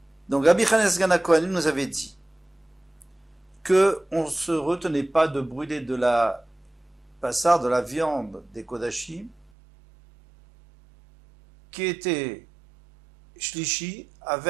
Donc Rabbi Chanes Gana Kohanim nous avait dit que on ne se retenait pas de brûler de la passard, de la viande des Kodashim, qui était shlishi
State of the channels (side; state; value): left; drops out; at 9.5 s